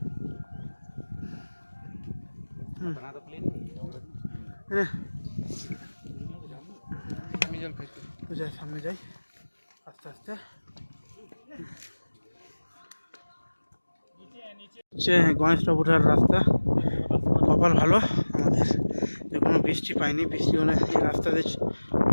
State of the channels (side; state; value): both; inverted; correlation -1.00